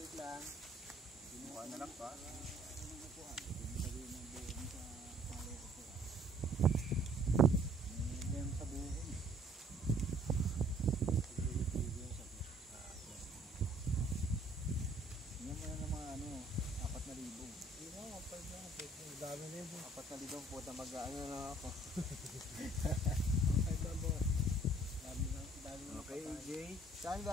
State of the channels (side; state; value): both; normal; correlation 0.59